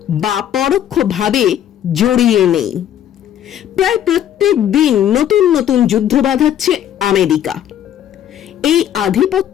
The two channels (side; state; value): right; quieter; 10.6 dB